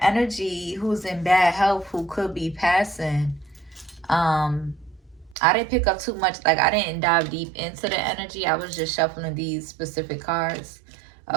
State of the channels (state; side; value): drops out; left; at 5.4 s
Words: energy who's in bad health who could be passing. I didn't pick up too much. Like, I didn't dive deep into the energy. I was just shuffling these specific cards.